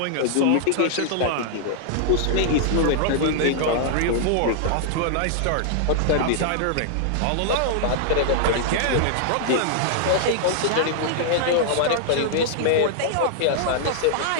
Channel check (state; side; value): different; both; correlation -0.01